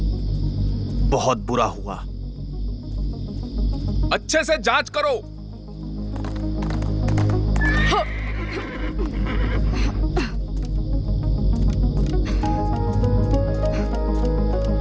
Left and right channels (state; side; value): identical; both; correlation 1.00